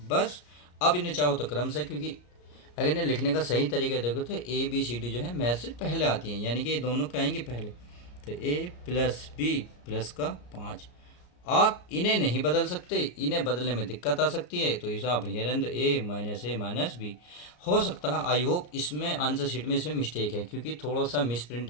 बस अब इन्हें चाहो तो क्रम से, क्योंकि अगर इन्हें लिखने का सही तरीका देखो तो ए बी सी डी जो है मैथ से पहले आती हैं, यानी कि ये दोनों क्या आएंगे पहले। तो ए प्लस बी प्लस का 5, आप इन्हें नहीं बदल सकते, इन्हें बदलने में दिक्कत आ सकती है, तो इसे आप हेरें ए माइनस बी। हो सकता है आई होप इसमें आंसर शीट में इसमें मिस्टेक है, क्योंकि थोड़ा सा मिस प्रिंट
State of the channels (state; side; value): late; right; 34 ms